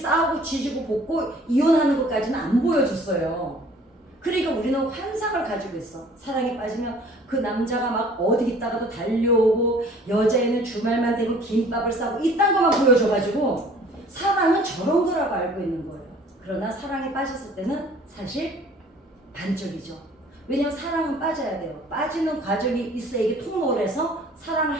지지고 볶고 이혼하는 것까지는 안 보여줬어요. 그러니까 우리는 환상을 가지고 있어. 사랑에 빠지면 그 남자가 막 어디 있다가도 달려오고 여자애는 주말만 되면 김밥을 싸고 이딴 것만 보여줘가지고 사랑은 저런 거라고 알고 있는 거예요. 그러나 사랑에 빠졌을 때는 사실 반쪽이죠. 왜냐면 사랑은 빠져야 돼요. 빠지는 과정이 있어야 이게 통로를 해서 사랑을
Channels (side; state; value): both; normal; correlation 0.52